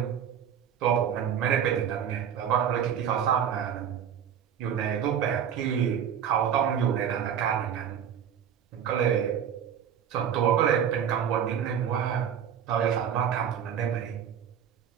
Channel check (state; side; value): quieter; left; 8.6 dB